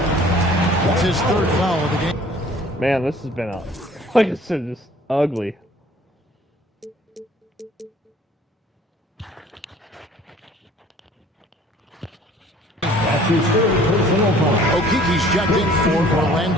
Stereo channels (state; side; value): normal; both; correlation 0.53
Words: That's his 3rd foul of the game. Man, this has been, like I said, just ugly. That's his 3rd personal foul. Okiki's checked in for